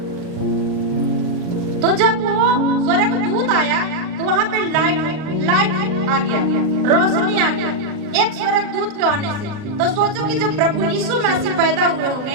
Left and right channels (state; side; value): late; left; 39 ms